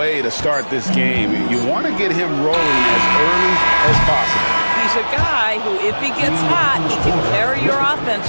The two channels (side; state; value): both; inverted; correlation -1.00